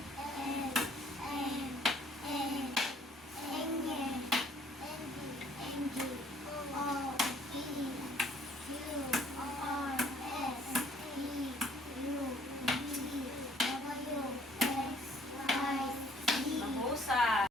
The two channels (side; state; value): both; normal; correlation 0.60